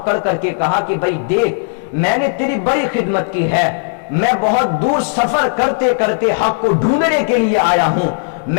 کر کے کہا کہ بھائی دیکھ میں نے تیری بڑی خدمت کی ہے، میں بہت دور سفر کرتے کرتے حق کو ڈھونڈنے کے لیے آیا ہوں،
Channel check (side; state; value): right; silent; digital silence